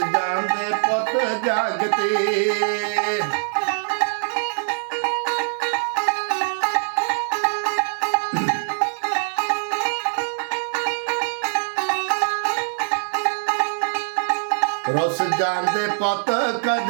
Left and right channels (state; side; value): silent; left; digital silence